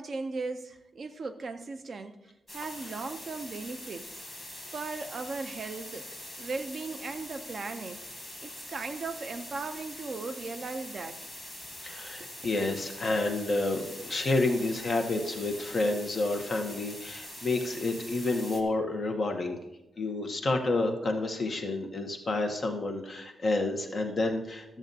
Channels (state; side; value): normal; both; correlation 0.83